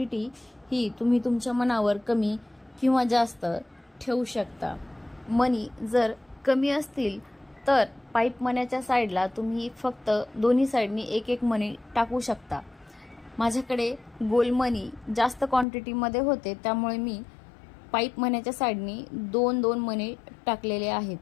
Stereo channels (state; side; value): drops out; right; at 15.7 s